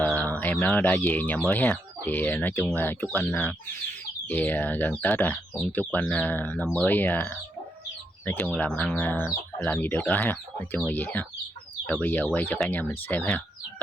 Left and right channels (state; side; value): normal; both; correlation 0.79